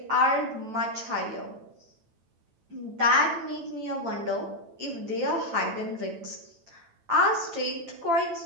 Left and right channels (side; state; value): left; late; 8.9 ms